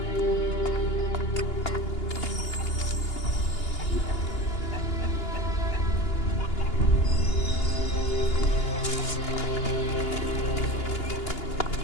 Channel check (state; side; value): late; right; 2.8 ms